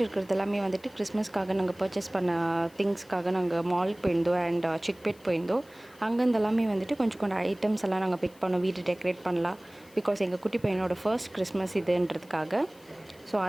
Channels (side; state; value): left; noise; hiss, 27 dB below the sound